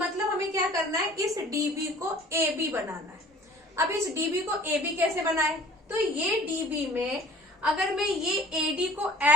हमें क्या करना है, इस DB को AB बनाना है। अब इस DB को AB कैसे बनाए, तो ये DB में अगर मैं ये AD को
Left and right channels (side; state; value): both; normal; correlation 0.50